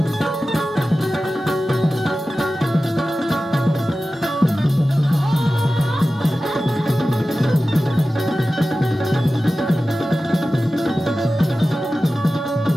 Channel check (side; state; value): both; normal; correlation 0.95